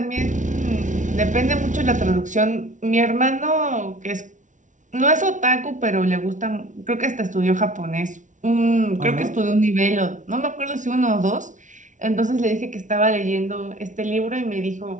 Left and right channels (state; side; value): late; left; 0.37 ms